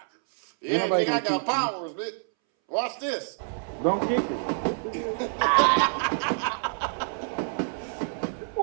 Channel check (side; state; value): left; silent; 60 dB below the other